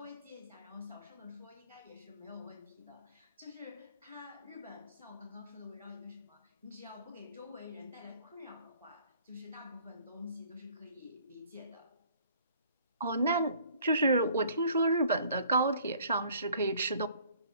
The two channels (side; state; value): both; inverted; correlation -0.56